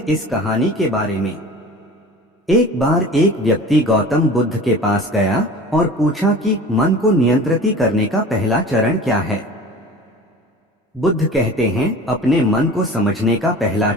इस कहानी के बारे में। एक बार एक व्यक्ति गौतम बुद्ध के पास गया और पूछा कि मन को नियंत्रित करने का पहला चरण क्या है। बुद्ध कहते हैं, अपने मन को समझने का पहला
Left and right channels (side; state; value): both; normal; correlation 0.39